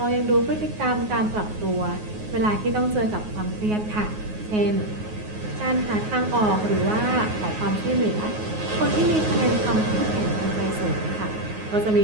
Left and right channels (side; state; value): left; late; 9.5 ms